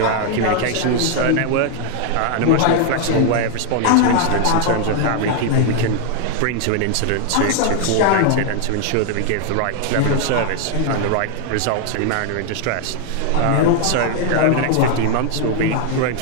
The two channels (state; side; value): different; both; correlation 0.00